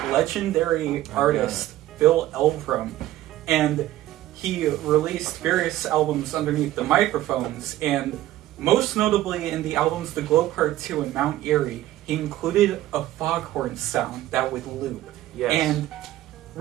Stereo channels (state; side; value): quieter; left; 14.6 dB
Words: artist Bill Elverum, and he released various albums underneath the Microphones, and most notably in the albums The Glow Part 2 and Mount Erie, he included a foghorn sound that would loop. Yes. And